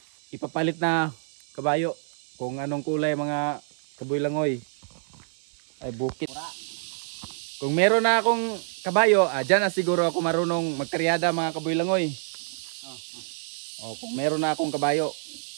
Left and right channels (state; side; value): silent; left; 60 dB below the other